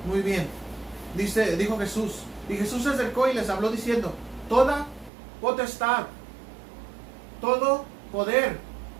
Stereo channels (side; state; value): left; drops out; at 5.1 s